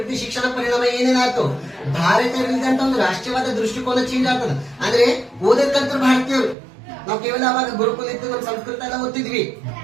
ಶಿಕ್ಷಣ ಪರಿಣಾಮ ಏನೇನಾಯ್ತು? ಭಾರತೀಯರಿದ್ದಂತ ಒಂದು ರಾಷ್ಟ್ರೀಯವಾದ ದೃಷ್ಟಿಕೋನ ಚೇಂಜ್ ಆಗ್ತದೆ. ಅಂದ್ರೆ ಓದಕ್ಕಂತ ಭಾರತೀಯರು, ನಾವು ಕೇವಲ ಅವಾಗ ಗುರುಕುಲ ಇತ್ತು, ನಮ್ಮ ಸಂಸ್ಕೃತ ಎಲ್ಲ ಓದ್ತಿದ್ವಿ,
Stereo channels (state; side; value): drops out; left; at 6.6 s